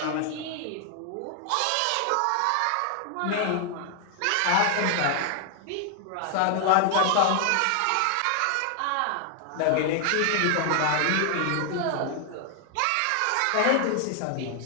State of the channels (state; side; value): different; both; correlation 0.00